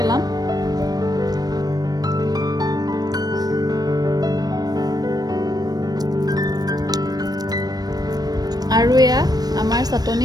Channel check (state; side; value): late; left; 0.19 ms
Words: আৰু এয়া আমাৰ চাটনি